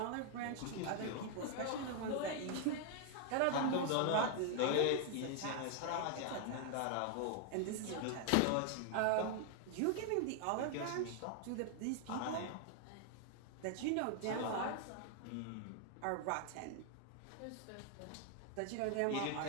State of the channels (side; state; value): both; different; correlation 0.00